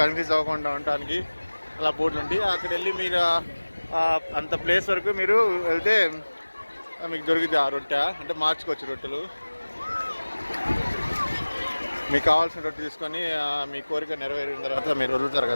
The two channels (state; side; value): inverted; both; correlation -1.00